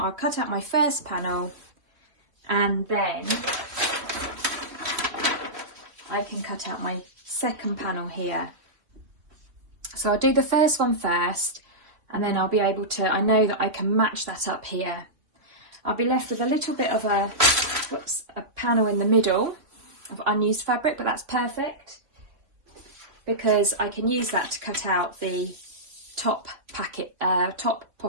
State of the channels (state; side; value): late; left; 3.2 ms